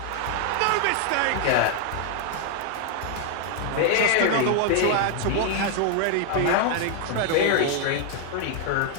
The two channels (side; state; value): both; different; correlation 0.00